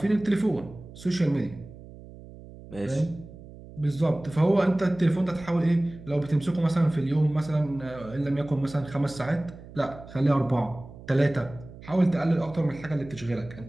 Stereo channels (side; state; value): right; noise; hum, 17 dB below the sound